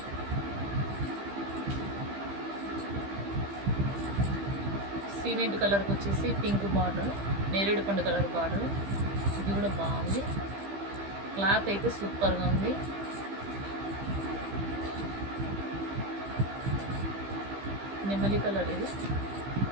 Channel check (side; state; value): left; late; 15 ms